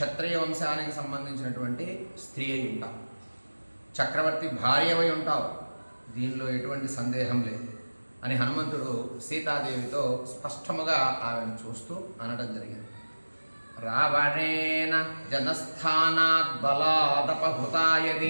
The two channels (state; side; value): inverted; both; correlation -1.00